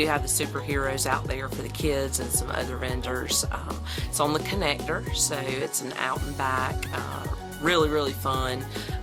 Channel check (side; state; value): both; identical; correlation 1.00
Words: have the superheroes out there for the kids and some other vendors. It's on the connector, so it's an out and back, really fun